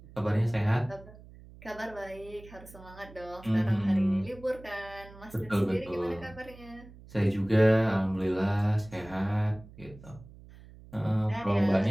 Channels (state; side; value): noise; right; hum, 20 dB below the sound